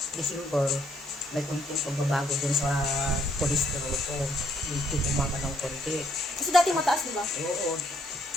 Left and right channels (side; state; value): both; normal; correlation 0.69